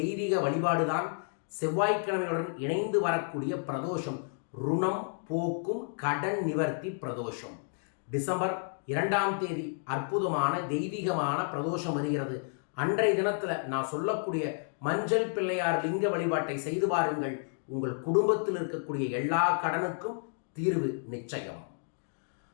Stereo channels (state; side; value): silent; right; digital silence